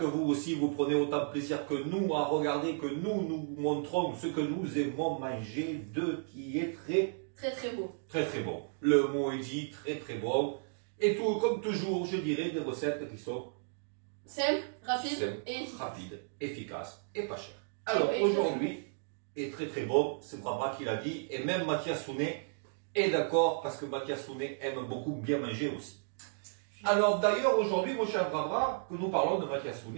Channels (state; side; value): silent; left; digital silence